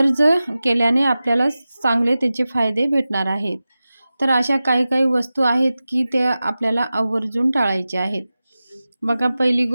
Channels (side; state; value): both; inverted; correlation -0.95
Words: केल्याने आपल्याला चांगले त्याचे फायदे भेटणार आहेत. तर अशा काही काही वस्तू आहेत की त्या आपल्याला आवर्जून टाळायचे आहेत. बघा, पहिली